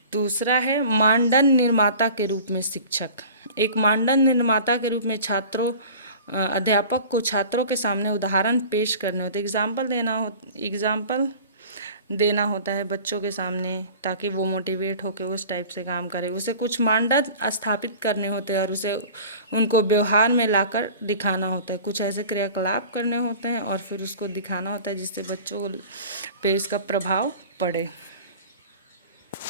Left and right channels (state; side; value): inverted; both; correlation -0.41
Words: दूसरा है मानदंड निर्माता के रूप में शिक्षक। एक मानदंड निर्माता के रूप में अध्यापक को छात्रों के सामने उदाहरण पेश करने होते, एग्जाम्पल देना होता है बच्चों के सामने ताकि वो मोटिवेट होकर उस टाइप से काम करे। उसे कुछ मानदंड स्थापित करने होते हैं और उसे उनको व्यवहार में लाकर दिखाना होता है। कुछ ऐसे क्रियाकलाप करने होते हैं और फिर उसको दिखाना होता है जिससे बच्चों पे इसका प्रभाव पड़े।